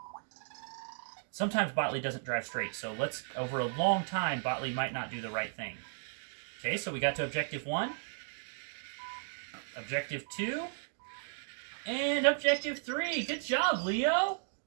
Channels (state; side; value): silent; left; digital silence